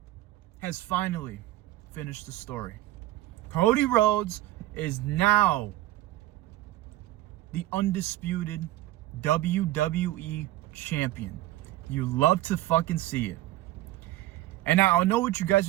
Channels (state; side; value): quieter; left; 15.7 dB